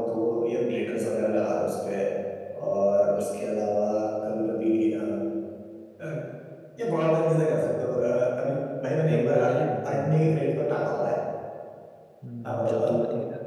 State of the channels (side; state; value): both; identical; correlation 1.00